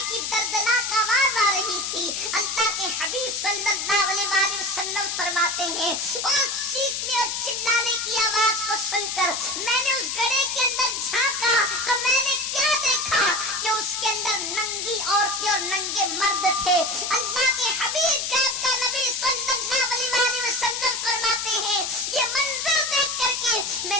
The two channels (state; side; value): noise; left; hiss, 2 dB below the sound